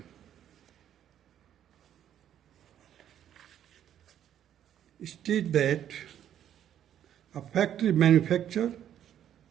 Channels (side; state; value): left; quieter; 10.4 dB